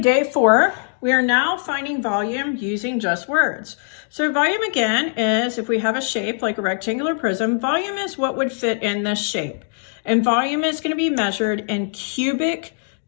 4. We are now finding volume using just words. So volume again is, if we have a shape like a rectangular prism, volume is what would fit in this shape. And volume is going to be measured in cubic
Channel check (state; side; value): silent; right; digital silence